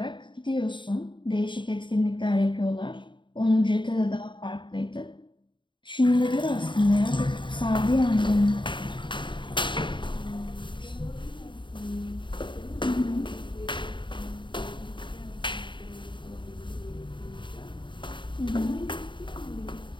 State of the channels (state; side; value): late; right; 0.23 ms